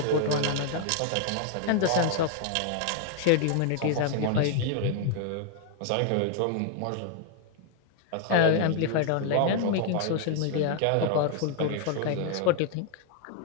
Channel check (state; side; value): different; both; correlation 0.00